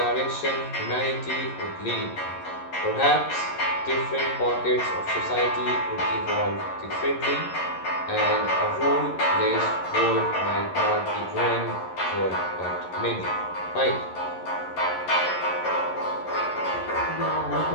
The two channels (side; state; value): right; late; 11 ms